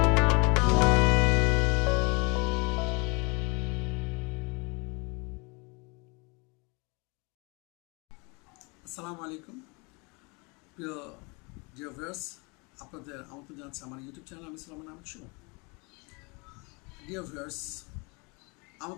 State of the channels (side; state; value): right; quieter; 29.7 dB